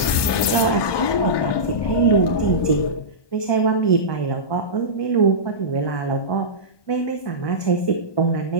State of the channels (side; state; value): right; late; 1.2 ms